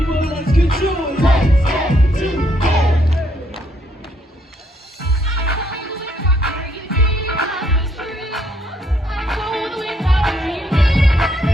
let's get to it. Let's get to it.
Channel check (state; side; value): normal; both; correlation 0.71